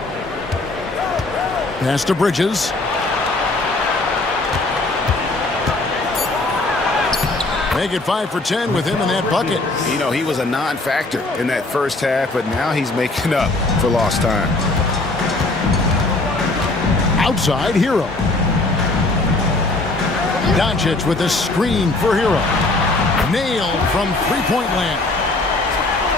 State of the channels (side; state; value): right; quieter; 3.0 dB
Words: Pass to Bridges. Make it 5 for 10 with him in that bucket. You know, he was a non-factor in that first half, but now he's making up for lost time. Outside, Hero. Doncic with a screen for Hero. Nailed from three-point land.